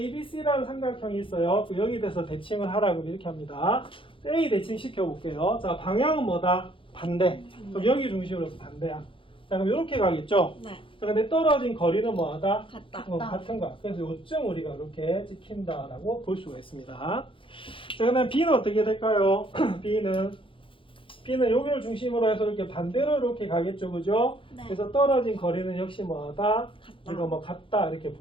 삼각형이 있어요. 그 여기 대해서 대칭을 하라 그러면 이렇게 합니다. A 대칭 시켜볼게요. 자, 방향은 뭐다? 반대. 그럼 여기 중심으로 해서 반대야. 자, 그럼 이렇게 가겠죠? 네. 자, 근데 떨어진 거리는 뭐하다? 같다. 같은 거야. 그래서 요점 우리가 이렇게 찍힌다라고 볼 수가 있습니다. 자, 그 다음 B는 어떻게 될까요? B는 여기를 중심으로 해서 이렇게 반대로 이렇게 가겠죠, 그죠? 네. 그래서 떨어진 거리는 역시 뭐하다? 같다. 이거 뭐 같다 이렇게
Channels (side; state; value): right; late; 0.25 ms